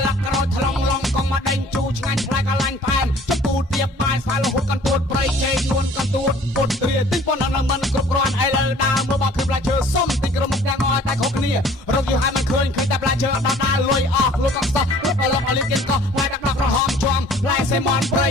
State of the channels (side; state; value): both; normal; correlation 0.52